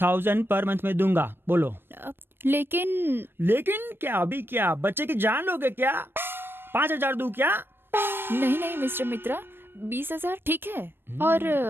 पर मंथ में दूंगा। बोलो। लेकिन क्या? अभी क्या बच्चे की जान लोगे क्या? 5,000 दूं क्या? नहीं मिस्टर मित्रा, 20,000 ठीक है। और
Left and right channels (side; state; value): left; late; 0.10 ms